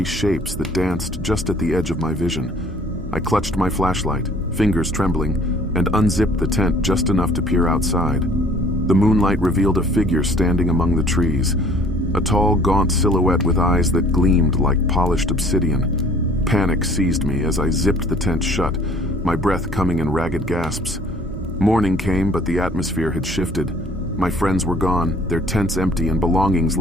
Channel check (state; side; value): normal; both; correlation 0.55